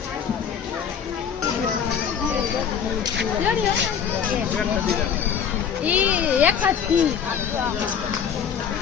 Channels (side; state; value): right; quieter; 7.7 dB